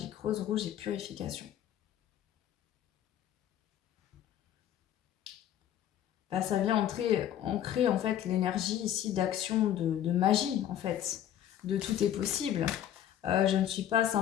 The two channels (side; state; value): right; quieter; 10.8 dB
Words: rose rouge et purification. Ça vient ancrer en fait l'énergie ici d'action, de magie en fait, de tout est possible. Je ne suis pas